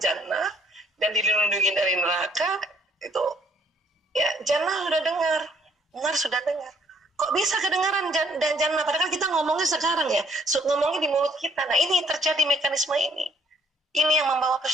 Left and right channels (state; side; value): normal; both; correlation 0.64